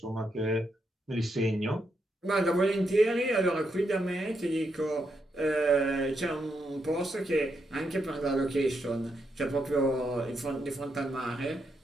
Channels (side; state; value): both; normal; correlation 0.81